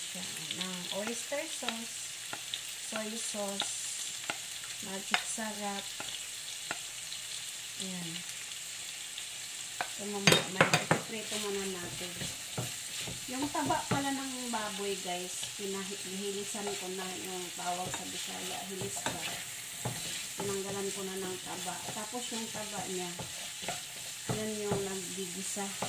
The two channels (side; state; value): both; identical; correlation 1.00